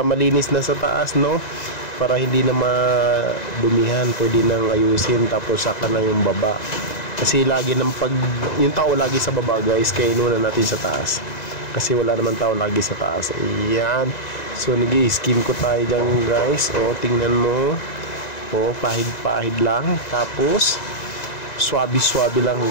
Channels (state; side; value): late; right; 2.0 ms